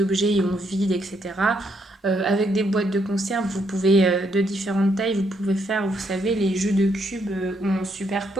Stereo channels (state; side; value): normal; both; correlation 0.74